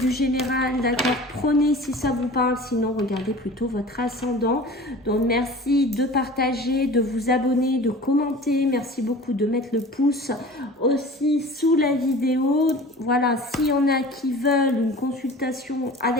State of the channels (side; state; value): both; normal; correlation 0.40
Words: général, d'accord? Prenez si ça vous parle, sinon regardez plutôt votre ascendant. Donc merci de partager, de vous abonner, de commenter. Merci beaucoup de mettre le pouce aussi sous la vidéo. Voilà, s'il y en a qui veulent une consultation